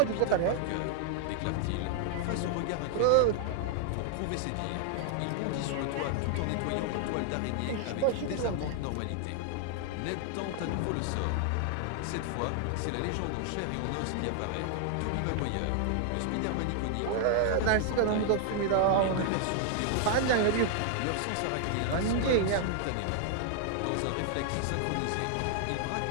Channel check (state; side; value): different; both; correlation 0.00